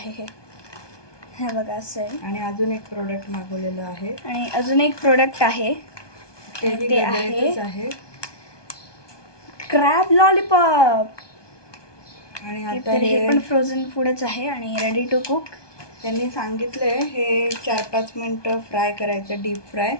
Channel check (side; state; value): right; late; 1.2 ms